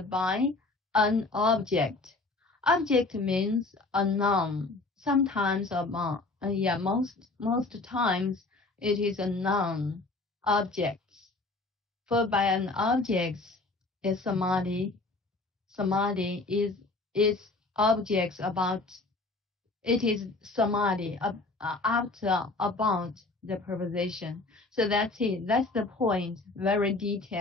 by an object. Object means a noun, sometimes Yeah, most times it is a noun objects. For by an object is samadhi. Samadhi is objects about. It is samadhi after about the preposition. So that's it. That's the point. Very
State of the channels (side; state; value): right; quieter; 3.3 dB